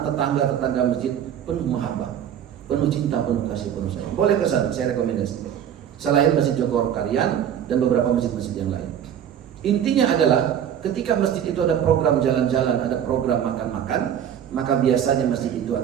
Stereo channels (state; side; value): quieter; left; 9.4 dB